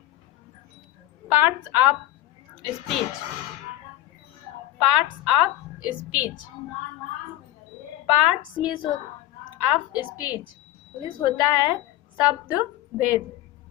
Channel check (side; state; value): right; quieter; 14.8 dB